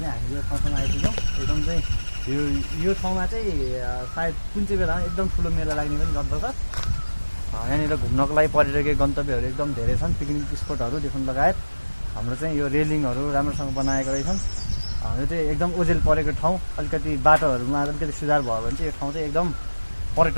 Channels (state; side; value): inverted; both; correlation -1.00